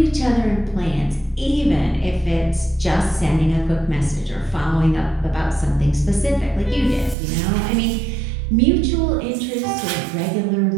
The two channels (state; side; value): drops out; left; at 7.2 s